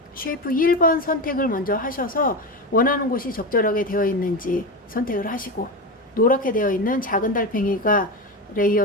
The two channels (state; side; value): normal; both; correlation 0.19